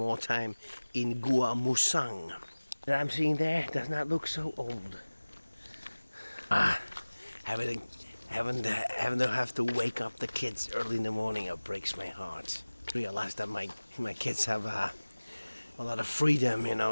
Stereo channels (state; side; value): inverted; both; correlation -1.00